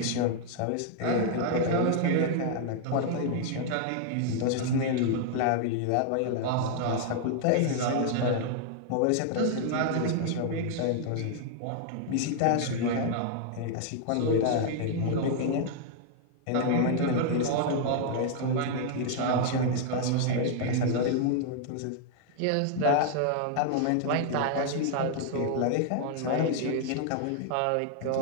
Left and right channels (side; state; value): both; different; correlation 0.00